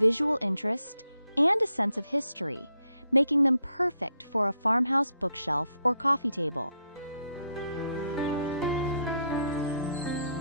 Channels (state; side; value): inverted; both; correlation -0.77